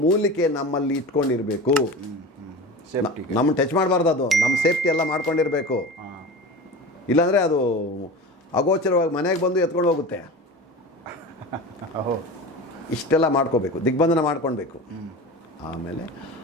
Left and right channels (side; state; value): both; normal; correlation 0.32